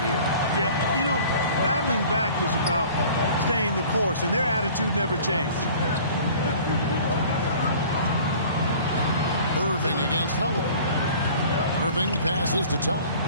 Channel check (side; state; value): both; inverted; correlation -0.47